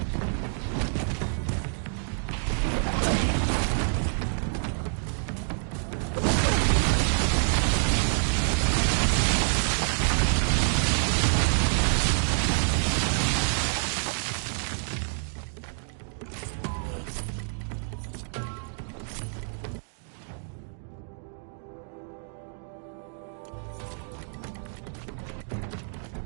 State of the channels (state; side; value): silent; left; 60 dB below the other